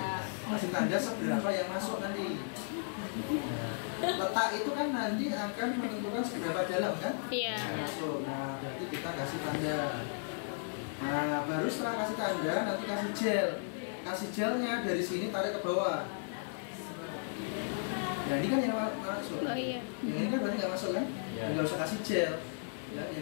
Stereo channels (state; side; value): silent; right; digital silence